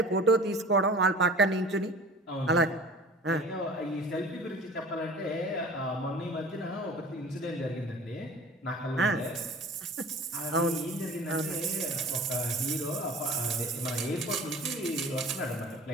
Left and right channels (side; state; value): both; normal; correlation 0.42